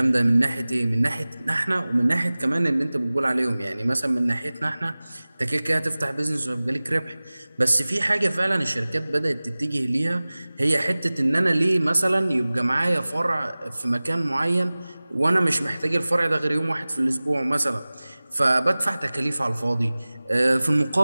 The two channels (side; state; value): both; inverted; correlation -0.99